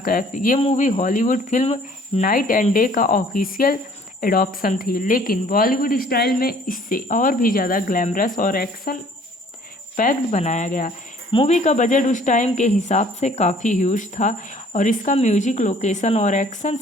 कैफ। ये movie Hollywood film night and day का ऑफिशियल एडॉप्शन थी, लेकिन बॉलीवुड स्टाइल में इससे और भी ज़्यादा ग्लैमरस और एक्शन पैक्ड बनाया गया। मूवी का बजट उस टाइम के हिसाब से काफ़ी ह्यूज था और इसका म्यूजिक, लोकेशन और एक्शन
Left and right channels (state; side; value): normal; both; correlation 0.56